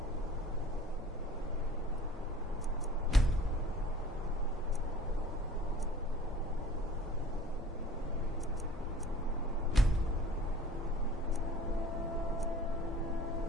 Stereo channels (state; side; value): normal; both; correlation 0.47